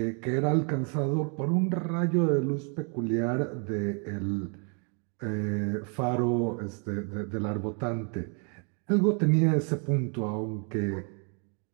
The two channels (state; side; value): quieter; left; 38.8 dB